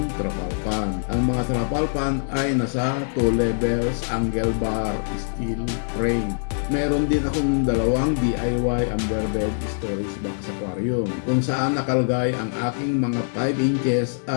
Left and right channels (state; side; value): silent; right; 57 dB below the other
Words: trapal pan. Ang mga trapal pan ay nasa 2 levels angle bar steel frame. Meron din akong 2 DIY underbed storage box aquarium kung saan nakalagay ang aking mga 5 inches